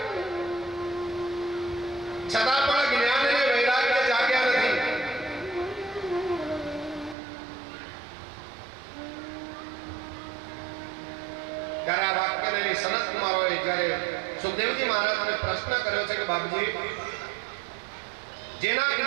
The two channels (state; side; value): drops out; left; at 7.2 s